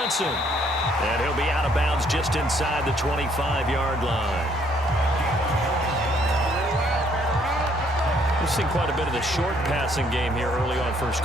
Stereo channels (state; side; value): normal; both; correlation 0.66